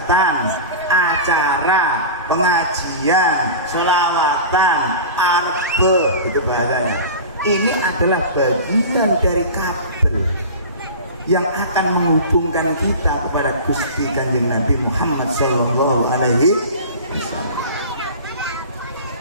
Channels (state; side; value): inverted; both; correlation -0.33